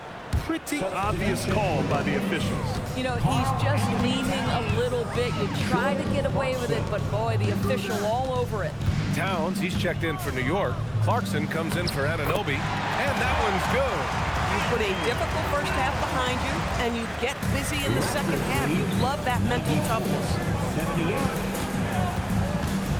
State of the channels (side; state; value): both; identical; correlation 1.00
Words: Pretty obvious call by the officials. You know, he's just leaning a little bit. You try to get away with it, but boy, the official all over it. Towns, he's checked in for New York. Clarkson comes in for Anunoby, and that one's good. You put a difficult first half behind you, and you get busy in the second half. You love that mental toughness.